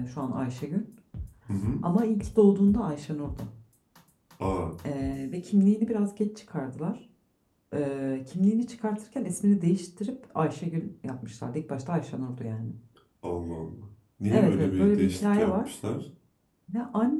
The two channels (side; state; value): both; identical; correlation 1.00